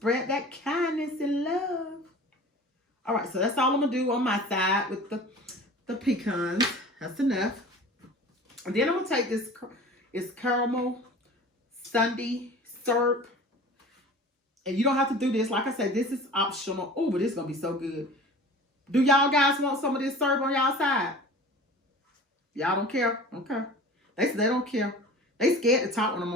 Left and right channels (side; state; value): both; normal; correlation 0.41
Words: that kindness and love. All right, so that's all I'm going to do on my side with the pecans. That's enough. And then I'm going to take this, it's Carmel Syrup. And you don't have to do this. Like I said, this is optional. Oh, but this is going to be so good. Do y'all guys want some of this syrup on y'all side? Y'all don't care? Okay. They say they don't care. They scared to talk when I'm